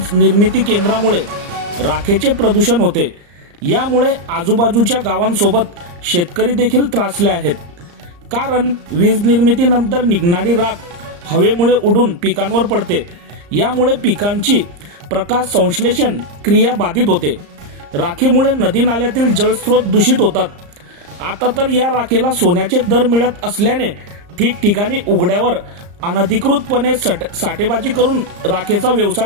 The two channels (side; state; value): left; late; 34 ms